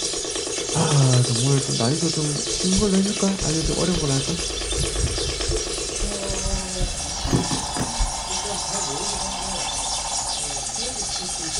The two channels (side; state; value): both; identical; correlation 1.00